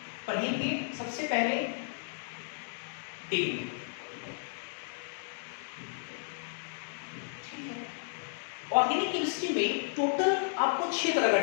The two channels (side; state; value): right; silent; digital silence